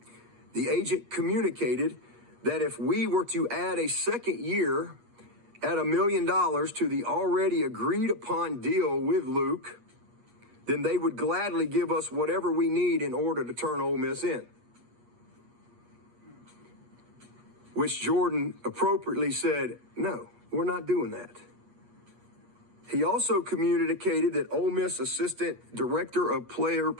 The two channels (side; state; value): left; late; 8.4 ms